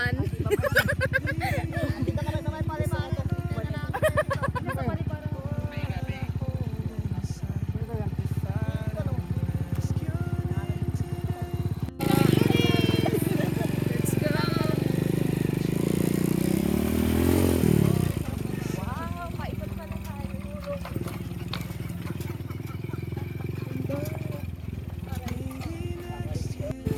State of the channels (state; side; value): identical; both; correlation 1.00